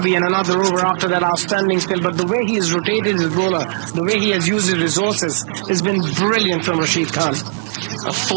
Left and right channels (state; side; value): silent; left; digital silence